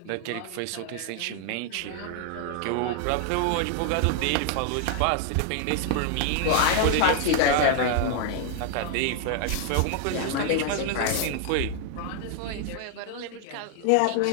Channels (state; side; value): different; both; correlation 0.00